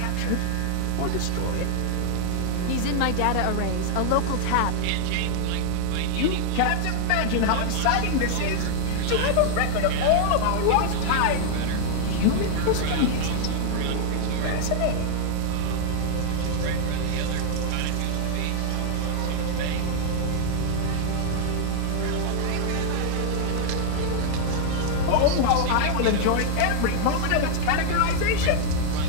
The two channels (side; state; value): both; different; correlation 0.00